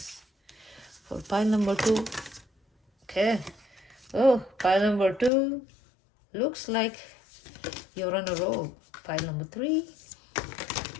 for pile number 2. Okay. Oh, pile number 2. Looks like you're on a roll. Pile number 3.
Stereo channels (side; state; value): right; drops out; at 5.3 s